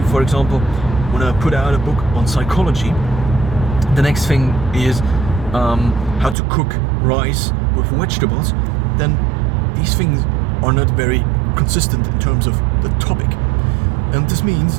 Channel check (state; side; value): drops out; left; at 6.4 s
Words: for example, want to put out a book on psychology, the next thing is how to cook rice with vegetables, then these things are not very consistent in terms of the topic. And this means